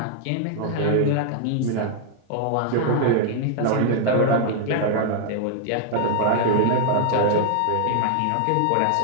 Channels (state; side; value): different; both; correlation 0.00